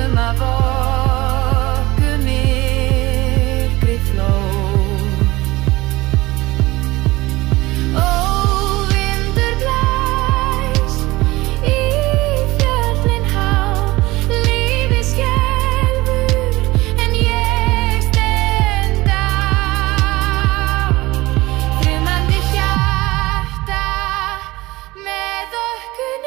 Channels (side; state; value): left; quieter; 20.1 dB